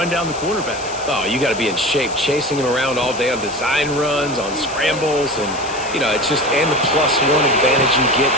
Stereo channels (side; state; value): left; noise; hiss, 13 dB below the sound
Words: down the quarterback. Oh, you got to be in shape, chasing him around all day on design runs, on scrambles, and, you know, it's just, and the +1 advantage you get